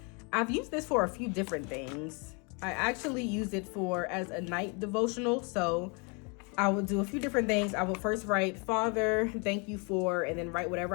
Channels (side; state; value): right; quieter; 33.4 dB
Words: I've used this for a few different things. I actually use it as a night devotional. So I would do a few different things. I would first write, Father, thank you for, and then write whatever